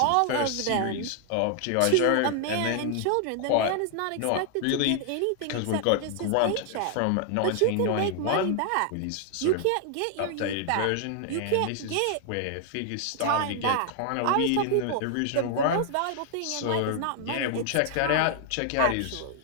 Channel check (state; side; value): different; both; correlation 0.00